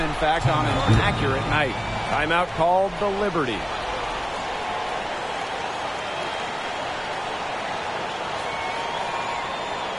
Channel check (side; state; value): both; identical; correlation 1.00